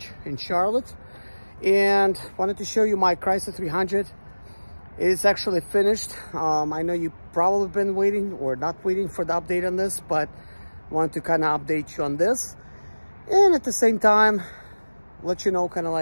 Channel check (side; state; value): both; inverted; correlation -1.00